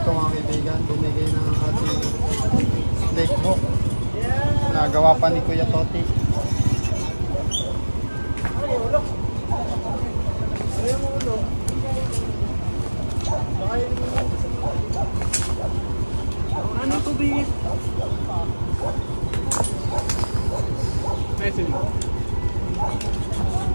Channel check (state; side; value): inverted; both; correlation -1.00